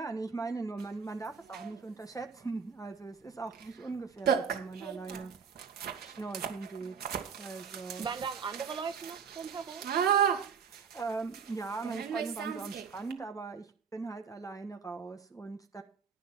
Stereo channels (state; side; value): quieter; left; 6.4 dB